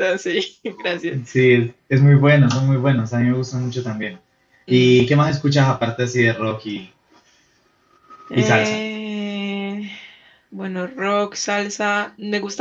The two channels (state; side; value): identical; both; correlation 1.00